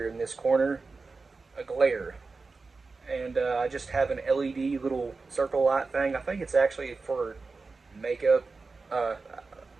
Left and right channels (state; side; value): quieter; left; 4.1 dB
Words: in this corner, a glare. And I just have an LED little circle light thing. I think it's actually for makeup.